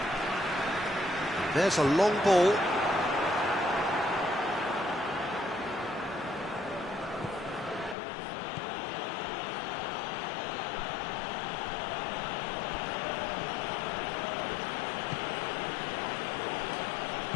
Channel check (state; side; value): drops out; right; at 8.0 s